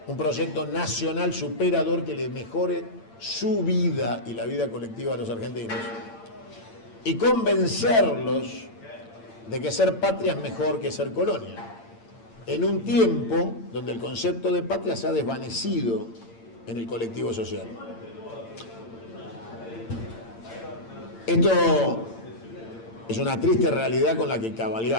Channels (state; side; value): late; right; 8.8 ms